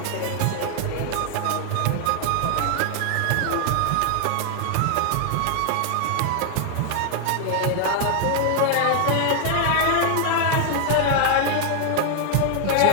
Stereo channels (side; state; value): both; different; correlation 0.00